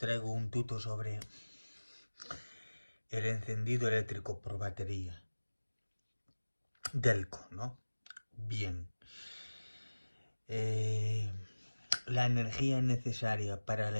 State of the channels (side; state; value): both; inverted; correlation -1.00